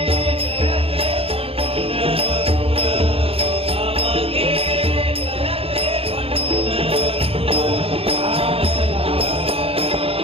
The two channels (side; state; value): left; late; 0.28 ms